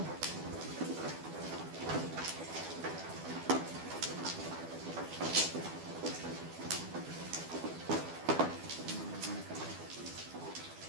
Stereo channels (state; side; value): late; left; 12 ms